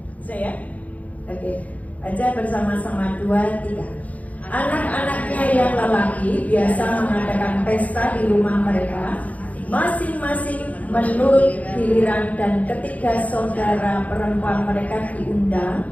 Saya? Oke. Baca bersama-sama 2, 3. Anak-anaknya yang lelaki biasa mengadakan pesta di rumah mereka, masing-masing menurut giliran, dan ketiga saudara perempuan mereka diundang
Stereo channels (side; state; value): right; late; 0.072 ms